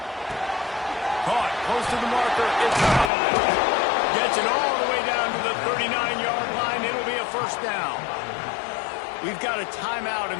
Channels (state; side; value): drops out; right; at 3.1 s